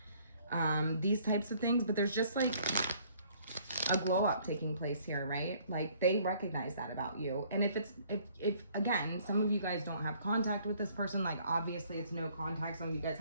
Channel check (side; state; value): both; inverted; correlation -0.60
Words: these types of things. But there's just like a glow up taking place here, right? Like, they recognize that about you. And if again, some of you guys don't have contact with this person, like obviously it's no contact. Some of you guys